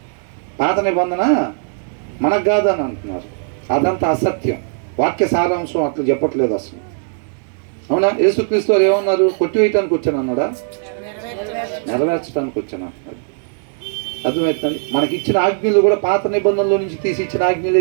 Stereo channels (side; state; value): left; silent; digital silence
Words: పాత నిబంధన మనకు కాదని అంటున్నారు. అదంతా అసత్యం. వాక్య సారాంశం అట్లా చెప్పట్లేదు అసలు. అవునా? యేసుక్రీస్తు వారు ఏమన్నారు? కొట్టివేయటానికి వచ్చాను అన్నాడా? నెరవేర్చడానికి వచ్చాను అన్నాడు. అర్థమవుతుంది? మనకి ఇచ్చిన ఆజ్ఞలు కూడా పాత నిబంధనలో నుంచి తీసి ఇచ్చిన